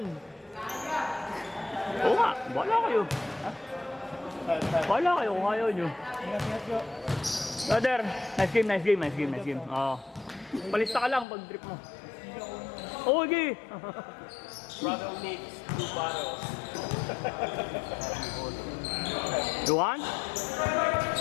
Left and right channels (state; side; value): drops out; right; at 11.2 s